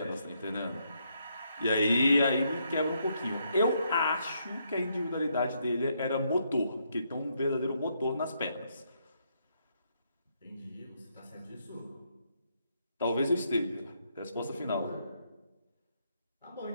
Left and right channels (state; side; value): inverted; both; correlation -0.76